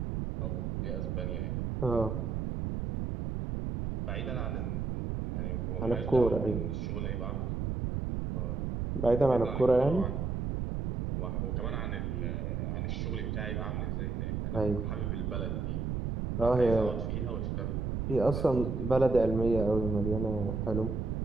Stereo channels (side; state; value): right; noise; rumble, 1 dB below the sound